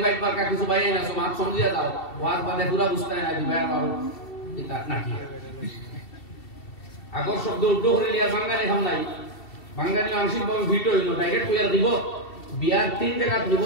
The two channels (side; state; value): right; late; 2.7 ms